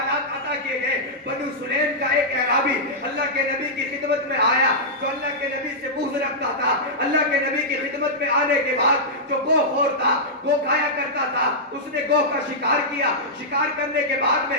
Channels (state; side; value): normal; both; correlation -0.11